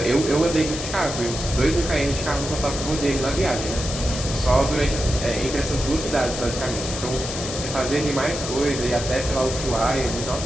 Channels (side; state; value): left; noise; hiss, 7 dB below the sound